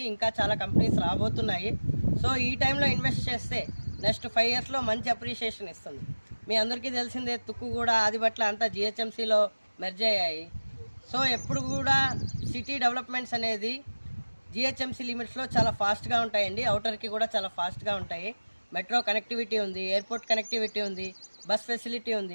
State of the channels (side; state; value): both; inverted; correlation -1.00